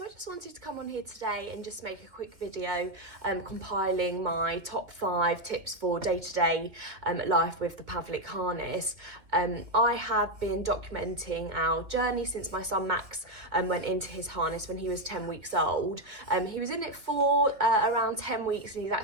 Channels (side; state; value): left; late; 2.1 ms